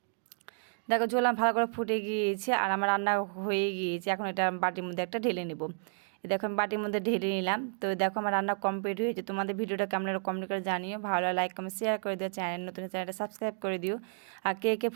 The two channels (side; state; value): left; silent; 57 dB below the other